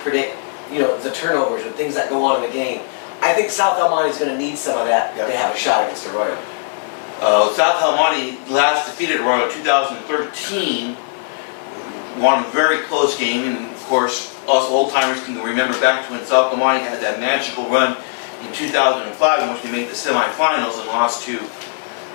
the turnovers and things that go on in the game. I think South El Monte is going to need some of that to have a shot against Arroyo. South El Monte last defeated Arroyo in 2013. Won a very close game, and of course, us old-timers can remember back to when South El Monte had that magical run in 2005 in which they made the semifinals and lost to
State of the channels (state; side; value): silent; right; digital silence